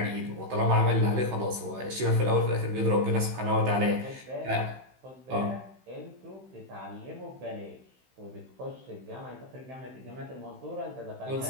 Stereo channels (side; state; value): left; late; 15 ms